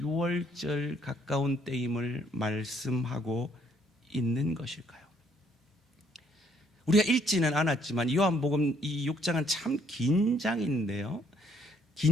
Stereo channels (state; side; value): normal; both; correlation 0.67